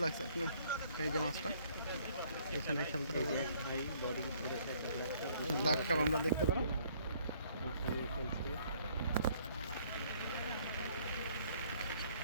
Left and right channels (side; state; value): both; inverted; correlation -0.62